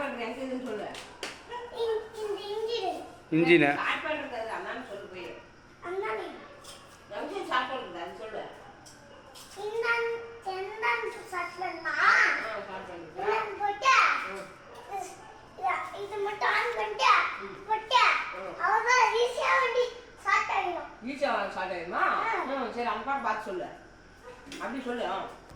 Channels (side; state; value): both; identical; correlation 1.00